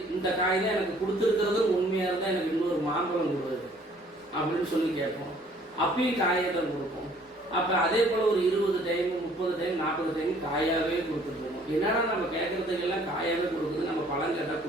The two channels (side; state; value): both; normal; correlation 0.58